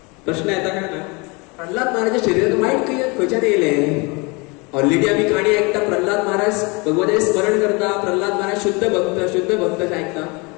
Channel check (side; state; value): right; quieter; 28.3 dB